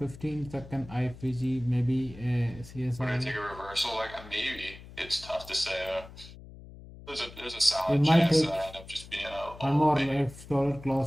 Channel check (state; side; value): noise; left; hum, 17 dB below the sound